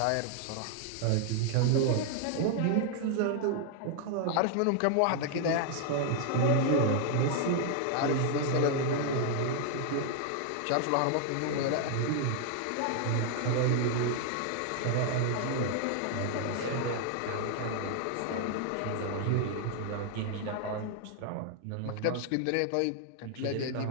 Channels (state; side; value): different; both; correlation 0.00